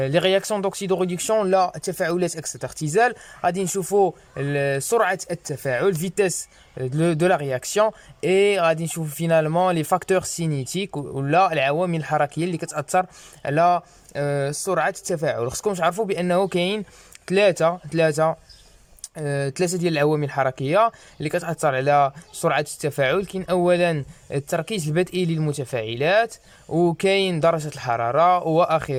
رياكسيون دوكسيدو ريدكسيون، لا التفاعلات اكسيت اختزال. غادي نشوفوا سرعه التفاعل فيتاس دو لا رياكسيون، اي غادي نشوفوا فينالمون لي فاكتور سينيتيك ولا العوامل الحركيه اللي كتاثر على سرعه التفاعل. خصكم تعرفوا بانه كاين ثلاثه ديال العوامل الحركيه اللي كتاثر على سرعه التفاعل. كاين اولا التركيز البدئي للمتفاعلات، وكاين درجه الحراره،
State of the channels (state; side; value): identical; both; correlation 1.00